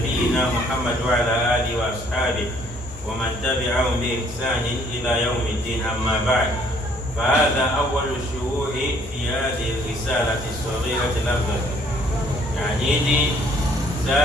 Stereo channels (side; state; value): both; normal; correlation 0.62